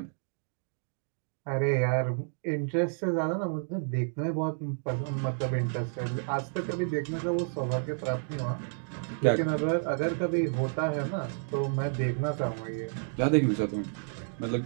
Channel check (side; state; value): left; silent; digital silence